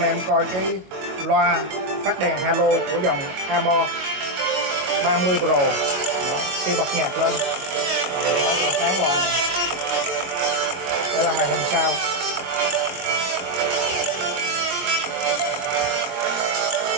em coi cái loa phát đèn halo của dòng Amor 30 Pro. Đó, khi bật nhạc lên nó sẽ sáng loa này. Đây là màn hình sau.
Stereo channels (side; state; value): left; late; 22 ms